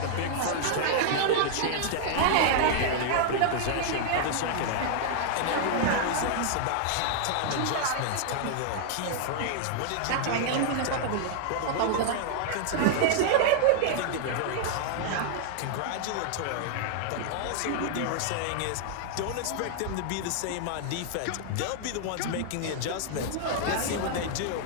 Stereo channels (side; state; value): both; different; correlation -0.01